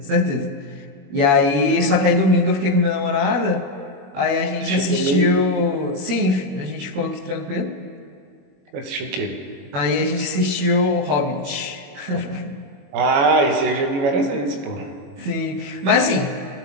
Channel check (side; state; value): left; late; 21 ms